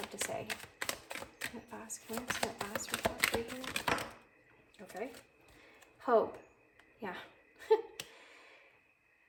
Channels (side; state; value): both; identical; correlation 1.00